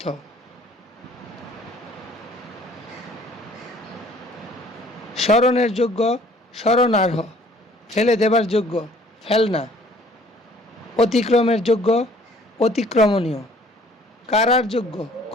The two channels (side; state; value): both; normal; correlation 0.56